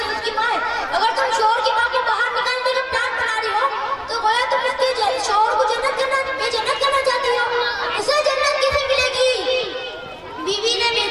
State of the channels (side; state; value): both; identical; correlation 1.00